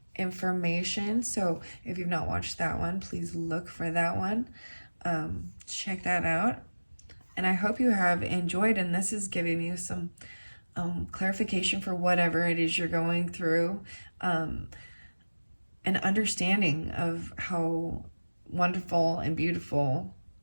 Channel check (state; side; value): inverted; both; correlation -1.00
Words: information. So if you've not watched that one, please look for that one. Check that out. And I hope you have enjoyed, and this is giving you some clarification for whatever it is you're going through, an understanding of how wonderful and beautiful